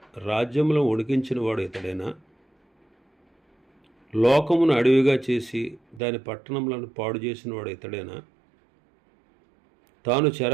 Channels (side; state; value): left; drops out; at 6.0 s